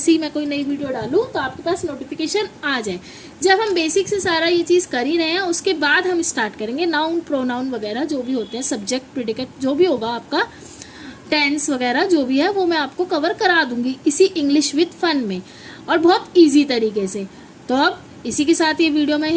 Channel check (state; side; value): identical; both; correlation 1.00